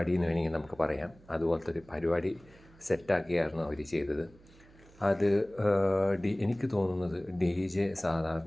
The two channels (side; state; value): right; noise; hum, 26 dB below the sound